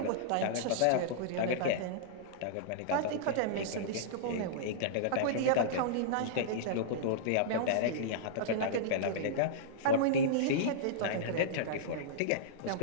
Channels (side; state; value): both; different; correlation -0.02